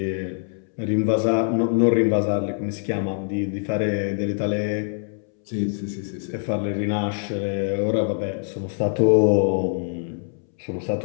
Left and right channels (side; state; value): right; silent; 63 dB below the other